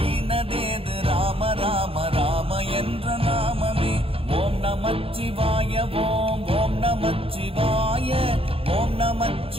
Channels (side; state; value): left; late; 0.27 ms